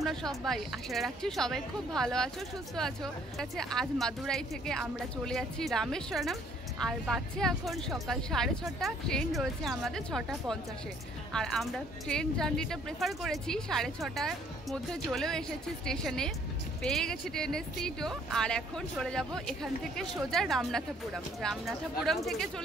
সবাই? আশা রাখছি সবাই খুব ভালো আছো, সুস্থ আছো। আজ মাদুরাই থেকে আমরা চলে যাচ্ছি রামেশ্বরম। আর বাজছে এখন সকাল 6:30। ট্রেন রয়েছে আমাদের 6:50-এ। আর আমরা ট্রেন জার্নিটা প্রেফার করেছি 6:30টার মধ্যে। চলেও এসেছি স্টেশনে, পেয়ে গেছি ট্রেনের সিটও। আর এখন চলে যাব এখান থেকে সোজা রামনাথপুরম থেকে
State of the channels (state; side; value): normal; both; correlation 0.62